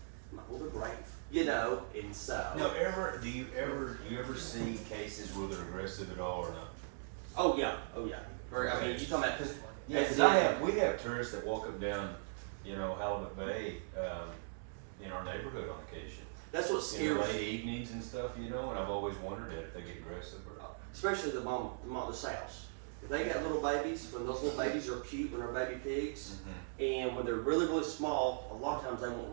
I'm like, well, they're brave, you know. And so. No, do you ever see cases where they're aggressive at all or not? Oh yeah. Very. I mean, you talking about because. Yeah, because we have tourists that walk up down, you know, Halibut Bay, in our neighborhood on occasion. That's what In the scares late evenings and stuff, you know, and I've always wondered if they get aggressive or not. especially the sows. If they got little babies, when those little babies are cute, when they're baby pigs, and when they're really, really small, a lot of times they won't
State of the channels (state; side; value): silent; left; digital silence